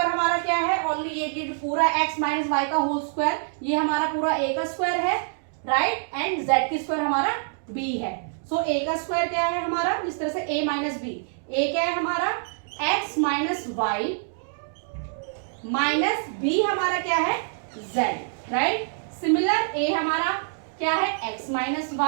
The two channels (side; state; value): left; silent; digital silence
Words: हमारा क्या है, ओनली ये कि पूरा x माइनस y का होल स्क्वायर, ये हमारा पूरा a का स्क्वायर है, राइट, एंड z की स्क्वायर हमारा b है। सो a का स्क्वायर क्या है हमारा, जिस तरह से a माइनस b, a क्या है हमारा x minus y minus b हमारा क्या है, z, राइट। सिमिलर ए हमारा क्या है x minus